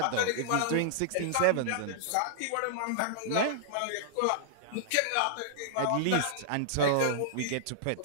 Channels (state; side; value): different; both; correlation -0.01